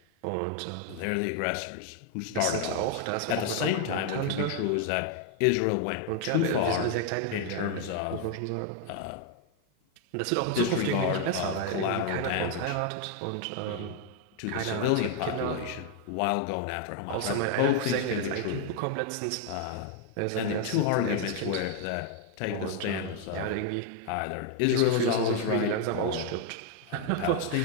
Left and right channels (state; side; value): different; both; correlation 0.00